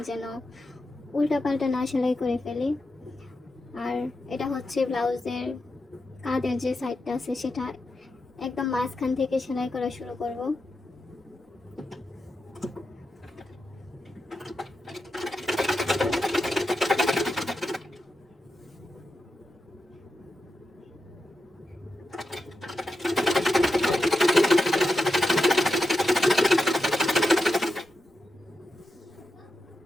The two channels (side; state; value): both; normal; correlation 0.88